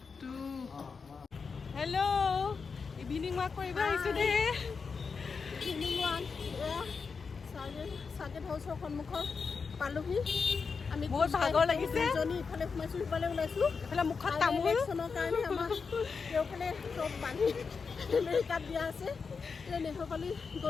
2. Hello. Evening walk for you guys today. Evening walk. Saget house সন্মুখৰ পালোহি আমি বহুত ভাগৰ লাগিছে জনি ইফালে সোমাইছো ইফালে ওলাইছো ইফালে মুখত তামোল ইলেকশ্যনৰ কাৰণে আমাৰ কেওফালে চব বান্ধি আমেৰিকাত দিয়া আছে নেহৰপালি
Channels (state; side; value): quieter; right; 5.2 dB